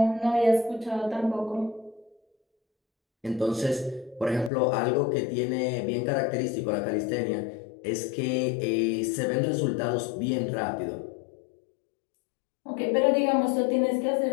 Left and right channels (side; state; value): right; drops out; at 4.5 s